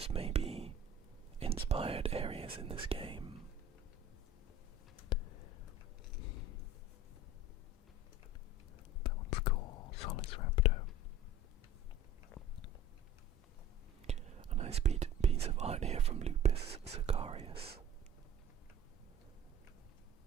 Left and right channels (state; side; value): normal; both; correlation 0.41